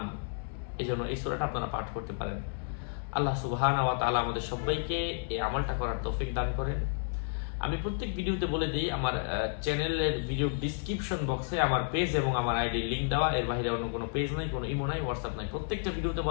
এজন্য এই সূরাটা আপনারা পাঠ করতে পারেন। আল্লাহ সুবহানাহু ওয়া তাআলা আমাদের সবাইকে এই আমলটা করার তৌফিক দান করেন। আমি প্রত্যেক ভিডিওতে বলে দিই, আমার চ্যানেলের ভিডিও ডেসক্রিপশন বক্সে আমার পেজ এবং আমার আইডি লিংক দেওয়া। এর বাইরে অন্য কোনো পেজ নাই, কোনো ইমো নাই, হোয়াটসঅ্যাপ নাই। প্রত্যেকটা ভিডিওতে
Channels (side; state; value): right; silent; digital silence